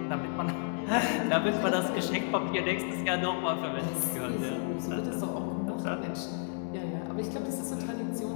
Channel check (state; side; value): silent; right; 57 dB below the other